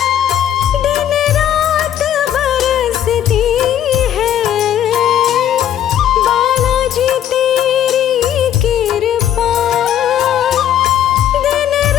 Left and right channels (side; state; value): right; quieter; 10.6 dB